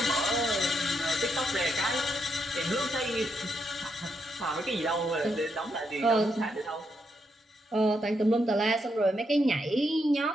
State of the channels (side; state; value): both; normal; correlation 0.80